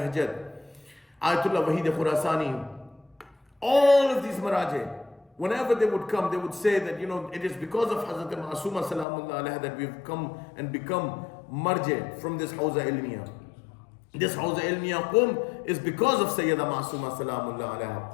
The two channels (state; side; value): drops out; right; at 9.1 s